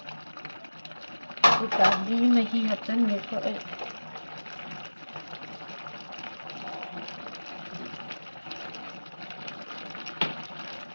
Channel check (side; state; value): both; inverted; correlation -1.00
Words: ꯎꯇꯥꯕꯤ ꯃꯍꯤ ꯍꯥꯞꯆꯟꯒꯦꯀꯣ ꯑꯩ